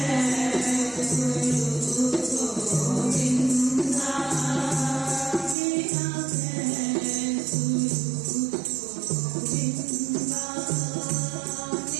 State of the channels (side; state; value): left; drops out; at 5.6 s